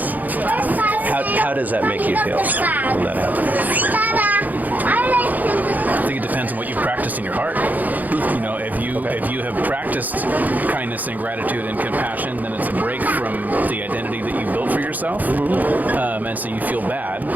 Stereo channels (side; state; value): left; late; 0.082 ms